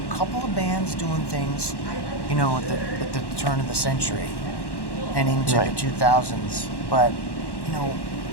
couple of bands doing things, at the turn of the century and into the 2000s. But,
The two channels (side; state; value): right; late; 1.1 ms